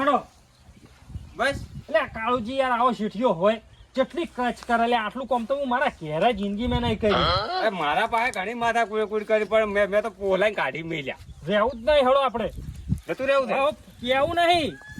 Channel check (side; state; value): both; identical; correlation 1.00